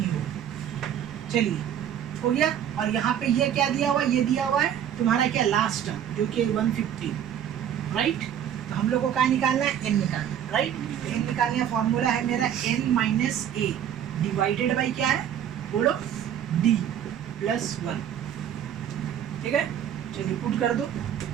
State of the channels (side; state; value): left; quieter; 9.8 dB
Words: होगा। चलिए, हो गया। और यहाँ पे ये क्या दिया हुआ है, ये दिया हुआ है तुम्हारा क्या लास्ट टर्म, जो कि 150, राइट। तो हम लोग को क्या निकालना है, एन निकालना है, राइट। तो एन निकालने का फॉर्मूला है मेरा n - a डिवाइडेड बाई क्या है, बोलो, d + 1। ठीक है, चलिए पुट कर दो।